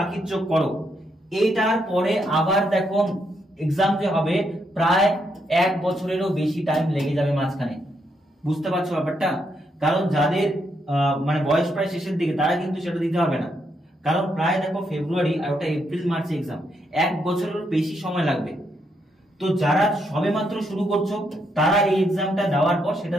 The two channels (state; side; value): normal; both; correlation 0.78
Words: চোখ করো। এইটার পরে আবার দেখো এক্সাম যে হবে প্রায় 1 বছরেরও বেশি টাইম লেগে যাবে মাঝখানে। বুঝতে পারছো ব্যাপারটা? কারণ যাদের মানে বয়স প্রায় শেষের দিকে তারা কিন্তু সেটা দিতে হবে না, কারণ প্রায় দেখো ফেব্রুয়ারি আর ওটা এপ্রিল মার্চে এক্সাম, 1 বছরের বেশি সময় লাগবে। তো যারা সবে মাত্র শুরু করছো তারা এই এক্সামটা দেওয়ার পর